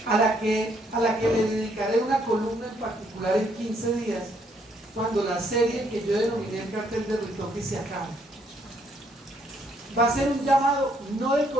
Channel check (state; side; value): normal; both; correlation 0.69